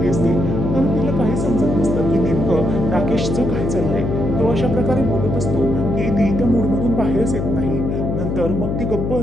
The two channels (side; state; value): left; noise; hum, 2 dB below the sound